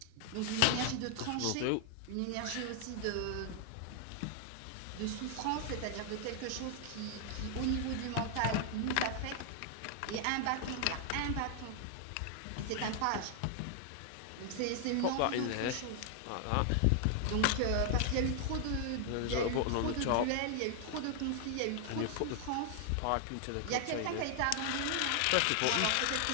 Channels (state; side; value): different; both; correlation 0.00